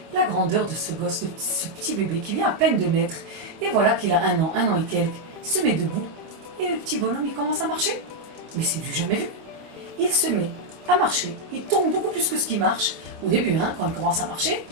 la grandeur de ce gosse, de ce petit bébé qui vient à peine de naître, et voilà qu'il a un an et quelques, il se met debout, et le petit bonhomme il commence à marcher. Mais c'est du jamais vu. Il se met à marcher, il tombe beaucoup plus que ce qui marche, au début quand il commence à marcher,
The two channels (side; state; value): left; late; 25 ms